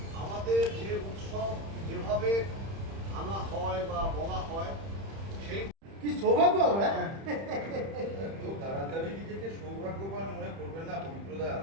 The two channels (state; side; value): late; left; 31 ms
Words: আমাদের যে উৎসব যেভাবে আনা হয় বা বলা হয় সেই কি সৌভাগ্য আমরা খুব তাড়াতাড়ি নিজেকে সৌভাগ্যবান মনে করবেন না পবিত্রদা।